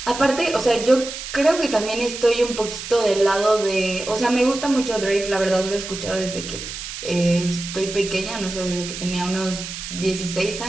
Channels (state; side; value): noise; right; hiss, 9 dB below the sound